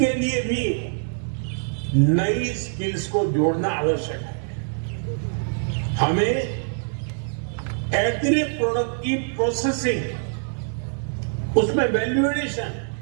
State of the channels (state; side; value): silent; left; digital silence